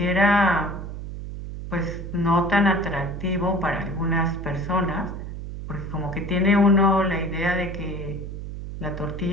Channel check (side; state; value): right; noise; hum, 8 dB below the sound